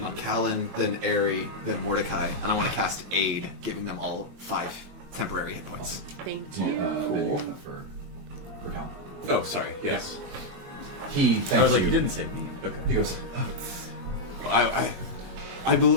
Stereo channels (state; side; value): late; left; 21 ms